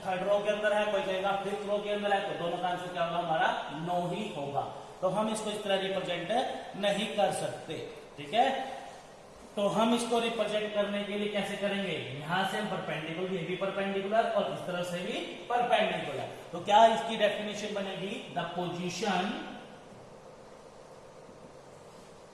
थर्ड रो के अंदर है, कोई कहेगा फिफ्थ रो के अंदर है, तो दोनों का आंसर क्या होगा? हमारा नो ही होगा. तो हम इसको इस तरह रिप्रेजेंट नहीं कर सकते. ठीक है, तो हम इसको रिप्रेजेंट करने के लिए कैसे करेंगे? यहां से परपेंडिकुलर, ये भी परपेंडिकुलर और इस तरह से भी परपेंडिकुलर. तो क्या इसकी डेफिनेशन बनेगी? The position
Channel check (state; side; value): identical; both; correlation 1.00